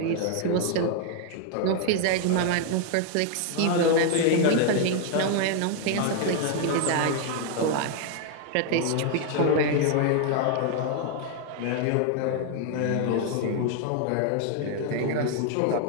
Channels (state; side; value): different; both; correlation 0.00